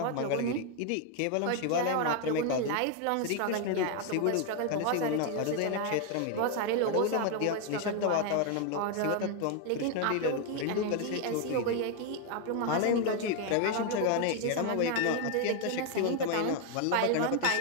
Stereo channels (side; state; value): both; different; correlation 0.01